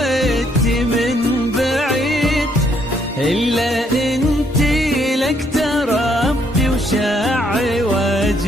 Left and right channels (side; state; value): both; normal; correlation 0.70